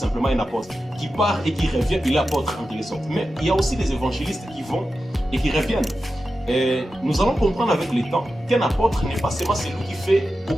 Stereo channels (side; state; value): both; normal; correlation 0.92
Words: un apôtre qui part et qui revient, il est apôtre en quelque sorte. Mais il y a aussi des évangélistes qui vont et qui reviennent. Et nous allons comprendre avec le temps qu'un apôtre n'est pas seulement celui qui fait